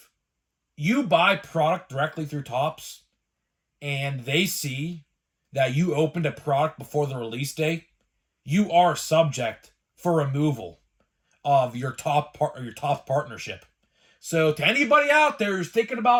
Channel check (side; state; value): both; identical; correlation 1.00